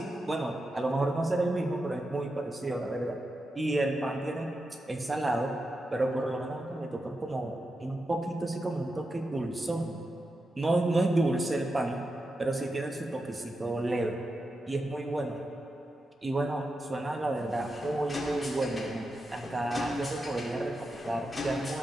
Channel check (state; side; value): normal; both; correlation 0.88